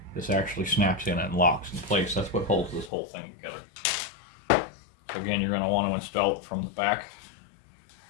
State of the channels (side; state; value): right; drops out; at 2.9 s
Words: this actually snaps in and locks in place. That's what holds this whole thing together. So again, you're going to want to install it from the back.